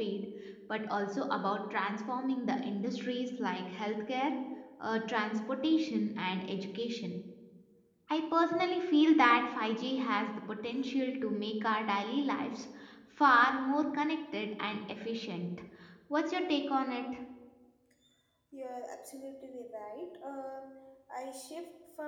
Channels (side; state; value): both; identical; correlation 1.00